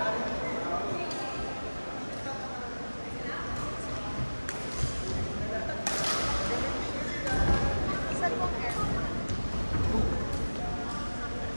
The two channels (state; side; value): inverted; both; correlation -1.00